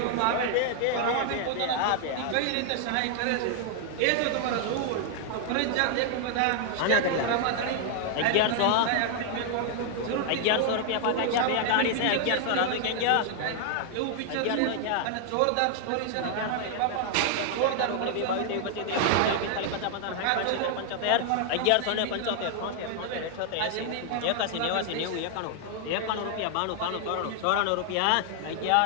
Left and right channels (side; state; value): both; different; correlation 0.00